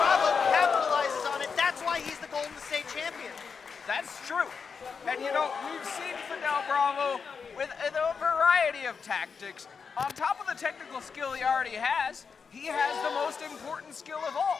capitalizes on it. That's why he's the Golden State champion. That's true. And you know, we've seen Fidel Bravo with a variety of tactics. On top of the technical skill he already has, he has the most important skill of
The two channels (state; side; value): quieter; right; 5.7 dB